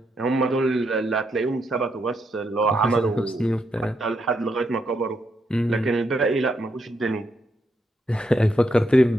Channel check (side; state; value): both; normal; correlation 0.80